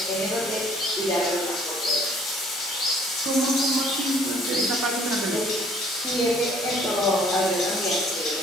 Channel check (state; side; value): normal; both; correlation 0.58